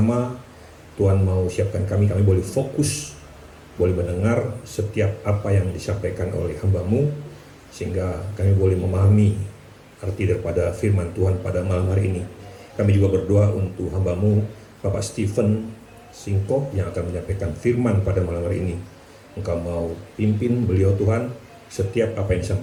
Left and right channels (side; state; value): both; identical; correlation 1.00